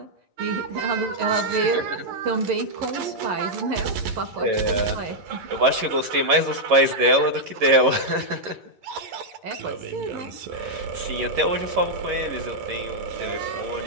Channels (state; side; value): late; left; 11 ms